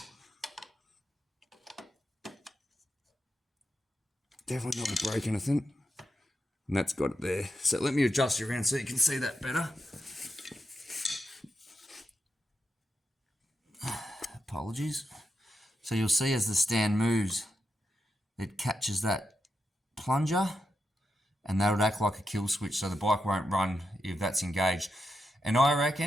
Definitely not going to break anything. And that's got it there. So let me adjust you around so you can see that better. Apologies. So you'll see as the stand moves, it catches that plunger, and that would act like a kill switch, so the bike won't run if that's engaged. And I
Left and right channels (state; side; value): normal; both; correlation 0.86